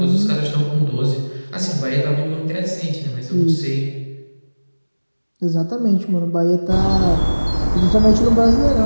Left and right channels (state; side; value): inverted; both; correlation -1.00